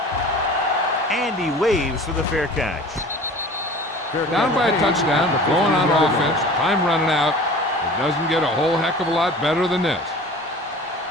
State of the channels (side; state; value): both; normal; correlation 0.41